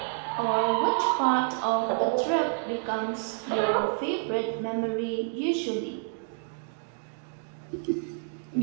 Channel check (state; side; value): silent; left; 59 dB below the other